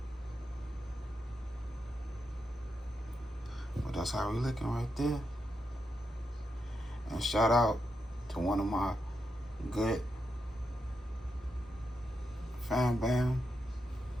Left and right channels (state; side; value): normal; both; correlation 0.84